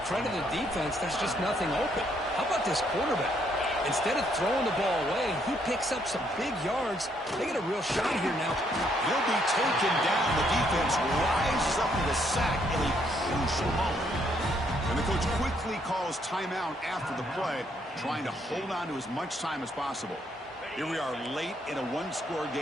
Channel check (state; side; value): normal; both; correlation 0.71